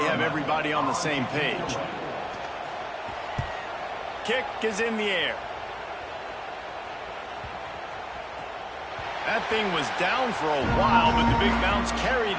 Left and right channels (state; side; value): identical; both; correlation 1.00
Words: have everybody on the same page. Kick is in the air. That thing was down for a while, but the big bounce